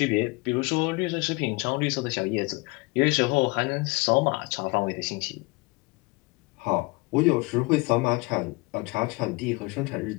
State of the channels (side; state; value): right; quieter; 26.1 dB